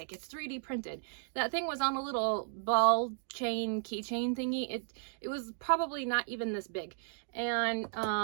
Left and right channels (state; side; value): silent; left; digital silence